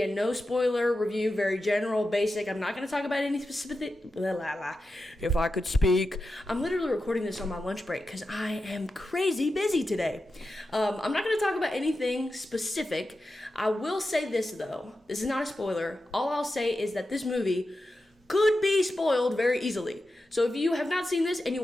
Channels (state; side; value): normal; both; correlation 0.91